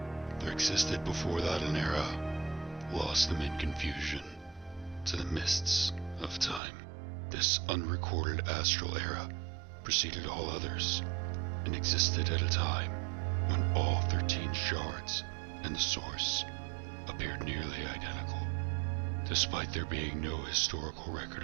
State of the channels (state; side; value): drops out; left; at 6.6 s